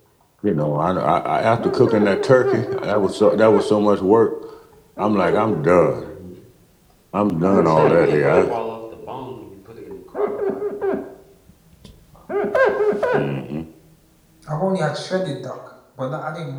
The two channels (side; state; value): both; identical; correlation 1.00